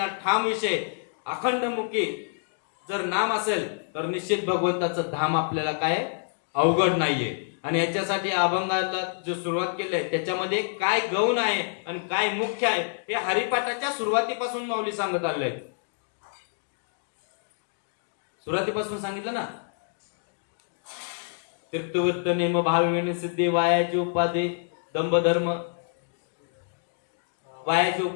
ठाम विषय, अखंड मुखी जर नाम असेल तर निश्चित भगवंताचं धाम आपल्याला काय अवघड नाहीये. आणि याच्यासाठी अभंगाला जो सुरुवात केली आहे त्याच्यामध्ये काय गौण आहे आणि काय मुख्य आहे हे हरिपाठाच्या सुरुवातीपासून माऊली सांगत आलंय. सुरुवातीपासून सांगितलं ना, तीर्थवर्त नेम भाविने सिद्धे वायाची उपाधी दंभ धर्म वायाची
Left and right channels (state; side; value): silent; right; digital silence